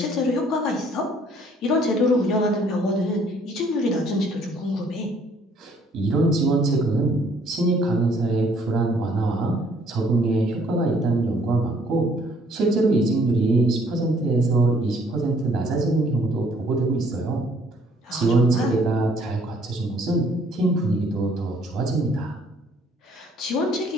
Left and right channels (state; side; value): normal; both; correlation 0.62